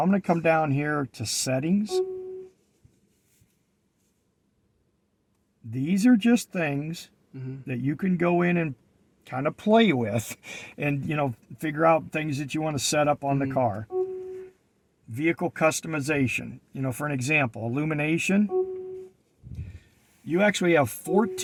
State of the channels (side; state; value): both; identical; correlation 1.00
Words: I'm going to come down here to settings. These are just things that you can go in and kind of play with and, figure out things that you want to set up on the car. Vehicle customization, for an example, illumination. You actually have